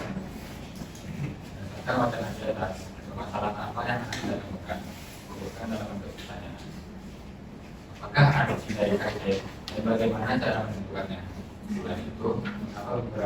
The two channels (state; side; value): identical; both; correlation 1.00